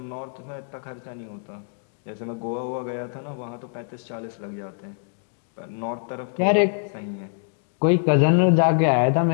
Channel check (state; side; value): silent; right; digital silence